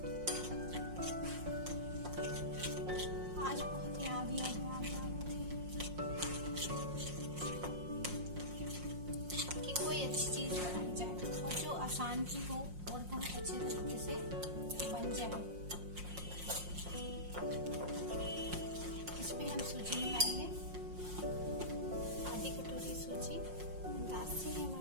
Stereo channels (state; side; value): late; left; 5.6 ms